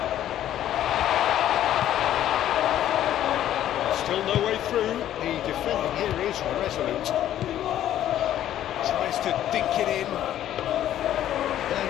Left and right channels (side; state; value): right; quieter; 11.9 dB